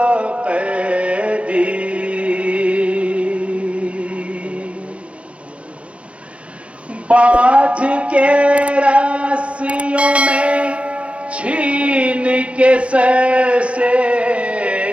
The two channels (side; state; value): left; late; 0.061 ms